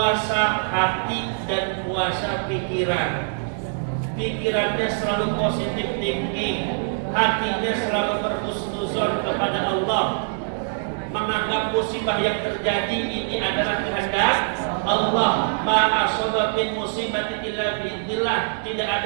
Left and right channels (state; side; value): silent; left; digital silence